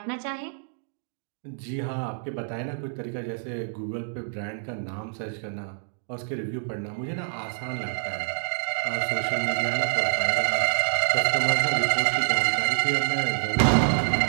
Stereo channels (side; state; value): left; silent; digital silence